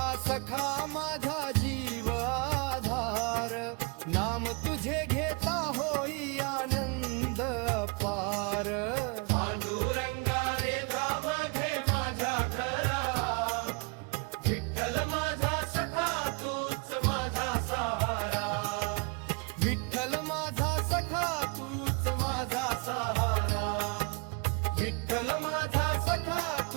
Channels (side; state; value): left; quieter; 31.5 dB